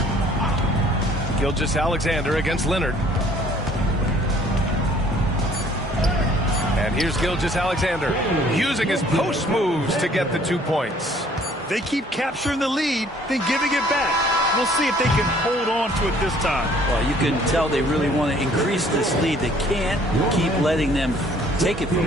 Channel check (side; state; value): both; normal; correlation 0.58